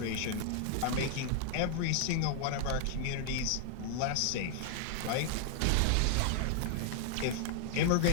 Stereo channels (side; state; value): both; different; correlation 0.00